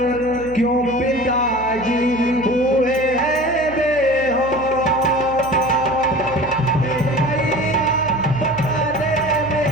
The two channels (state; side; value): noise; right; hum, 15 dB below the sound